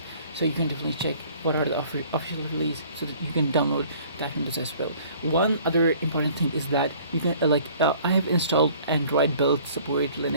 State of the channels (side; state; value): both; inverted; correlation -0.53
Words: so you can definitely check what are the official release so that you can download that windows as well. One other important thing is that you can I have installed Android build support,